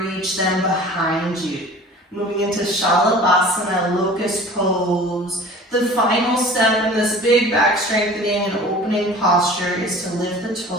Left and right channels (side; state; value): both; normal; correlation 0.44